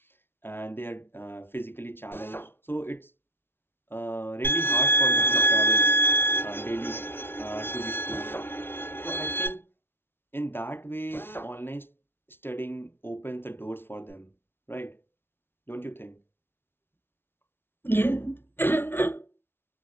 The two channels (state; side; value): late; right; 0.11 ms